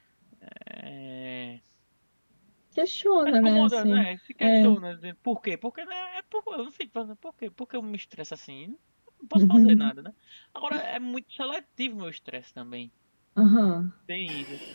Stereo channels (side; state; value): both; inverted; correlation -1.00